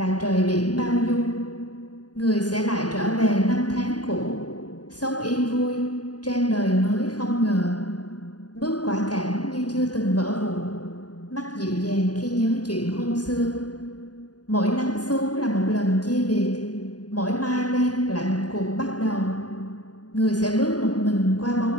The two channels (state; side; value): late; right; 0.69 ms